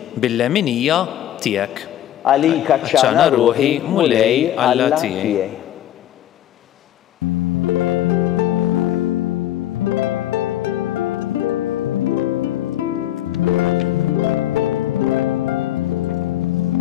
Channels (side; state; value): right; quieter; 12.3 dB